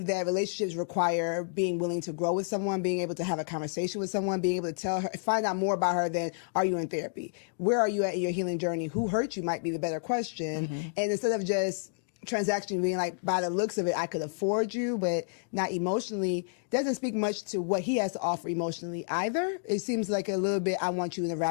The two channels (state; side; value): silent; right; digital silence